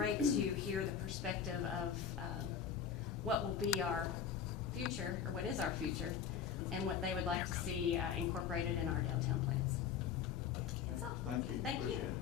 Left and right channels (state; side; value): quieter; right; 7.7 dB